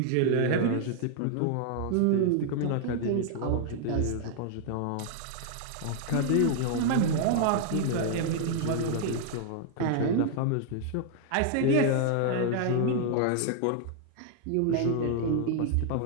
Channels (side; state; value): both; different; correlation 0.00